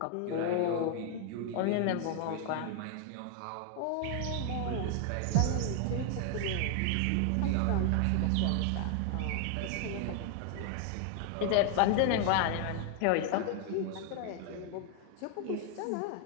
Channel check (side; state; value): both; different; correlation 0.00